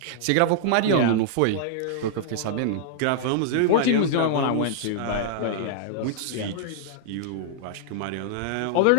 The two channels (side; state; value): both; different; correlation -0.01